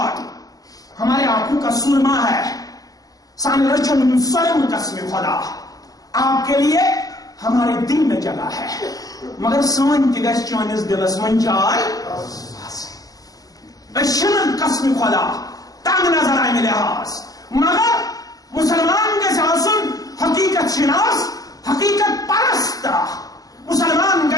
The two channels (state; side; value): late; right; 0.17 ms